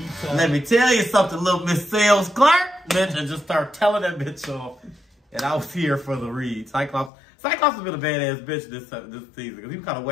Let me tell you something, little Miss Sales Clark, bitch, and just start telling that bitch off. And I was here for the read. Cyclops has been a badass bitch this season because he was kind of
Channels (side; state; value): right; drops out; at 7.1 s